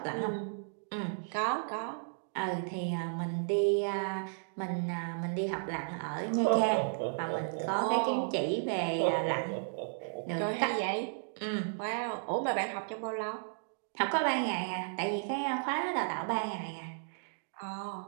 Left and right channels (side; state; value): left; silent; digital silence